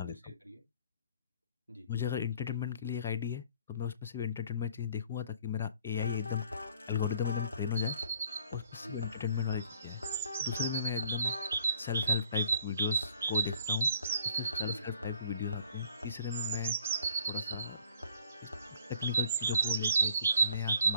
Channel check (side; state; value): both; inverted; correlation -0.60